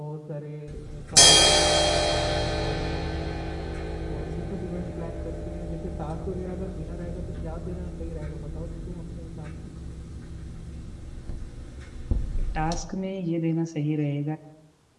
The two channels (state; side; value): identical; both; correlation 1.00